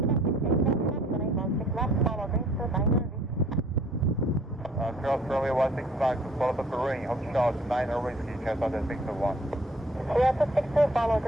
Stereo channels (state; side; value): normal; both; correlation 0.57